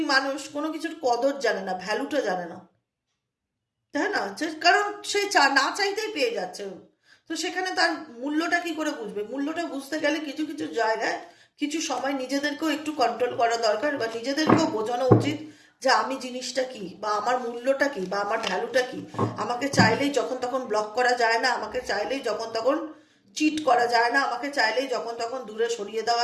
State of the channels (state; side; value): identical; both; correlation 1.00